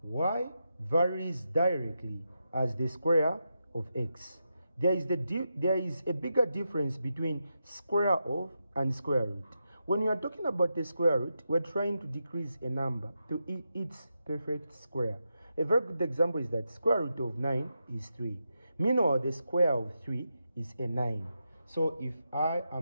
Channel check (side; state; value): both; inverted; correlation -0.86